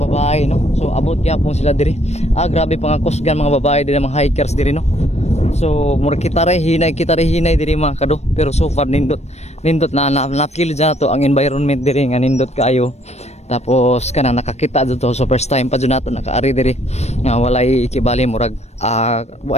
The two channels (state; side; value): late; right; 0.32 ms